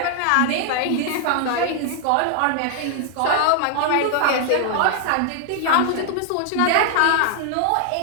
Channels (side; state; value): both; different; correlation 0.00